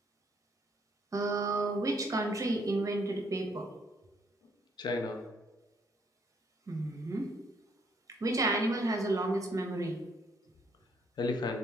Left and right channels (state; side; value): normal; both; correlation 0.68